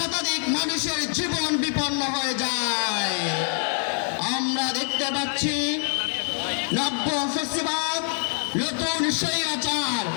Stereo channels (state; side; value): silent; right; 62 dB below the other